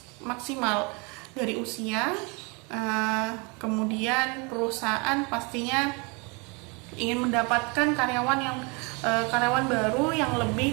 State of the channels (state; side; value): quieter; left; 30.7 dB